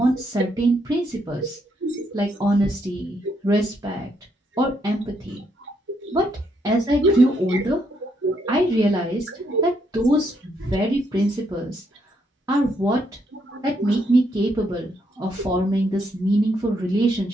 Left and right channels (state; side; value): normal; both; correlation 0.75